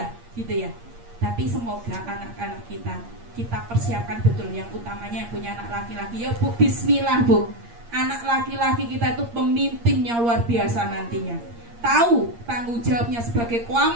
gitu ya. Tapi semoga anak-anak kita persiapkan betul, yang utamanya yang punya anak laki-laki ya Bu, bismillah Bu. Anak laki-laki kita itu pemimpinnya luar biasa nantinya. Tahu tanggung jawabnya sebagai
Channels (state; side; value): late; left; 8.6 ms